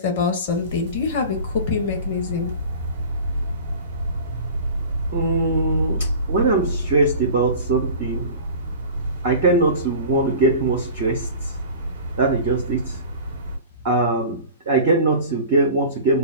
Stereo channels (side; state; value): both; inverted; correlation -0.38